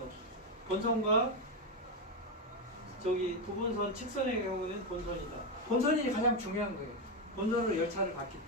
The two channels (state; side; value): normal; both; correlation 0.08